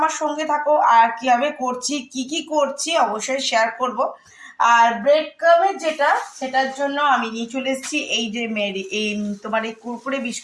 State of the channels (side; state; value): both; identical; correlation 1.00